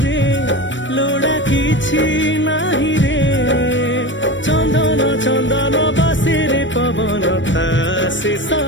लोड़ा किछि नाही रे चंदन चंदन बसे रे पवन ता शेष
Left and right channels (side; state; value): right; late; 0.54 ms